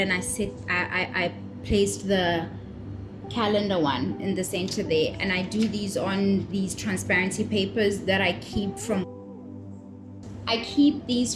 I placed the calendar one in the center there, and I do these on these transparency papers that I keep these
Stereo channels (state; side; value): identical; both; correlation 1.00